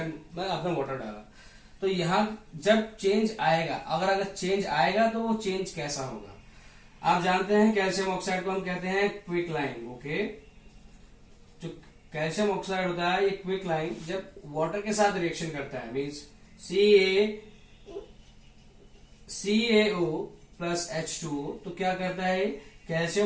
में आपने वाटर डाला, तो यहां जब चेंज आएगा, अगर चेंज आएगा तो वो चेंज कैसा होगा। आप जानते हैं कैल्शियम ऑक्साइड को हम कहते हैं क्विक लाइन। ओके, जो कैल्शियम ऑक्साइड होता है, ये क्विक लाइन जब वाटर के साथ रिएक्शन करता है, मीन्स CaO प्लस H2O, तो क्या करता है,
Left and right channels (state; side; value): identical; both; correlation 1.00